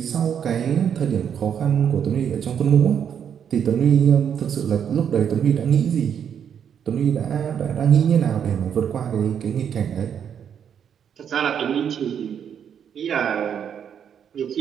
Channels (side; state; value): left; quieter; 8.2 dB